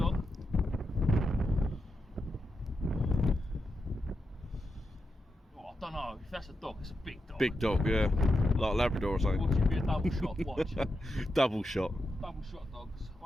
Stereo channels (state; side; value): normal; both; correlation 0.87